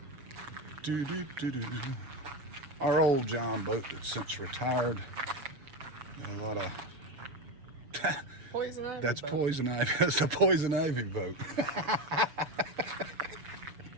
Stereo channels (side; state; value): left; late; 7.0 ms